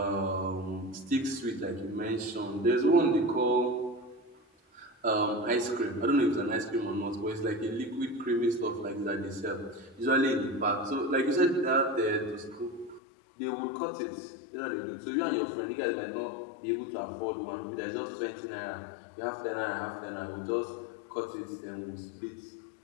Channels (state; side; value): drops out; right; at 13.0 s